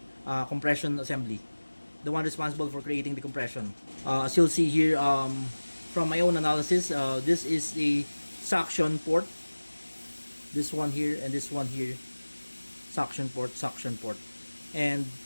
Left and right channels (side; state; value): both; inverted; correlation -1.00